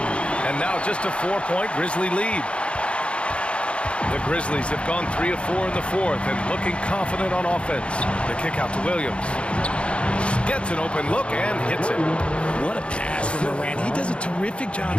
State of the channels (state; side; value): late; right; 0.059 ms